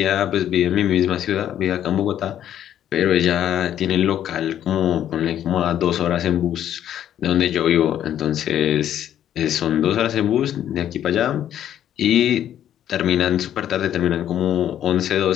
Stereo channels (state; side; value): quieter; right; 10.8 dB